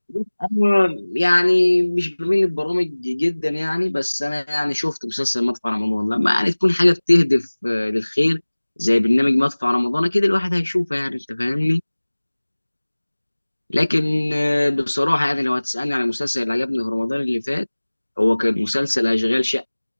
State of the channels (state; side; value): inverted; both; correlation -1.00